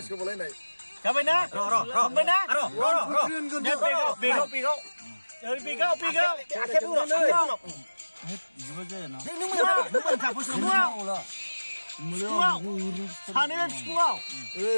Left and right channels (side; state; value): both; inverted; correlation -1.00